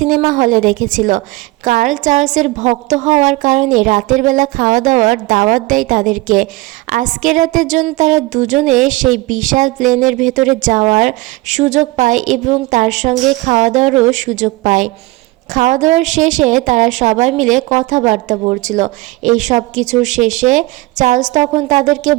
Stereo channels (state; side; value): quieter; left; 21.2 dB